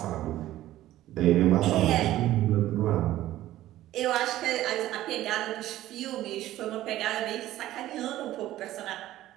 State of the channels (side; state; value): left; quieter; 14.5 dB